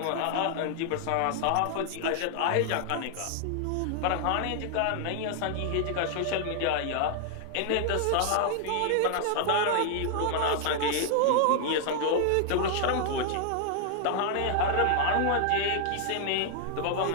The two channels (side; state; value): both; different; correlation 0.00